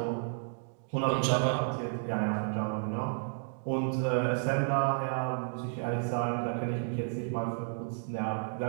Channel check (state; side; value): silent; left; digital silence